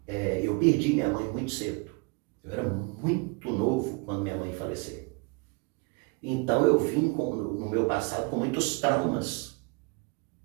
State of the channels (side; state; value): left; quieter; 29.6 dB